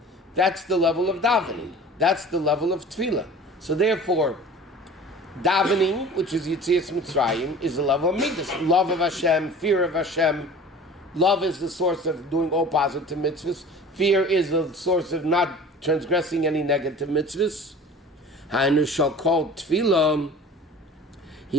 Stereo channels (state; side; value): normal; both; correlation 0.42